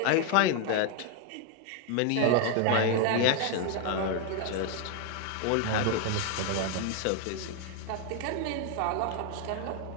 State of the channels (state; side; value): different; both; correlation 0.01